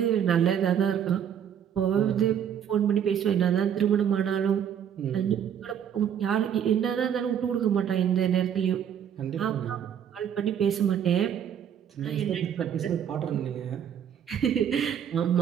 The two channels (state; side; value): quieter; left; 8.9 dB